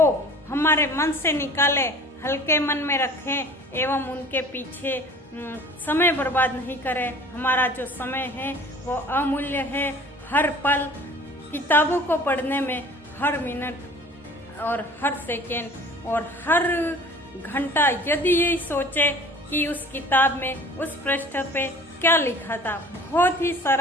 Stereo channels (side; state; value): both; normal; correlation 0.46